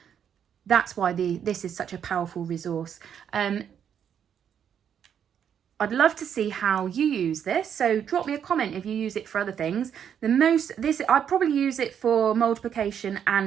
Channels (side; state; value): left; quieter; 8.5 dB